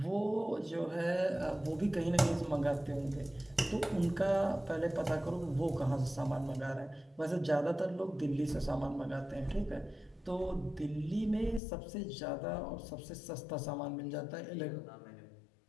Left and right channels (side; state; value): right; drops out; at 11.6 s